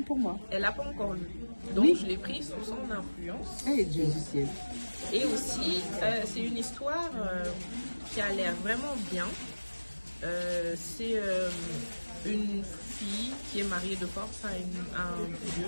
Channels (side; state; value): both; inverted; correlation -1.00